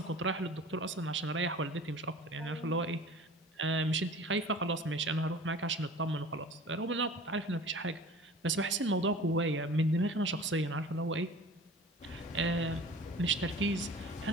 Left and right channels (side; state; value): both; normal; correlation 0.42